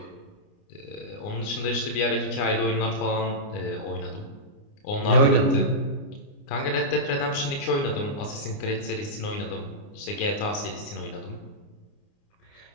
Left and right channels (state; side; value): late; right; 29 ms